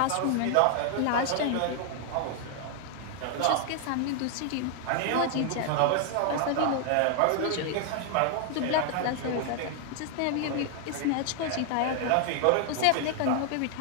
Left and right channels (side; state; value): both; different; correlation 0.00